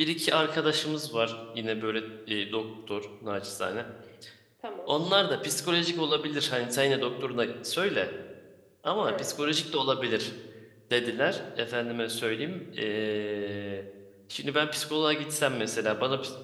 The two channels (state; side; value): identical; both; correlation 1.00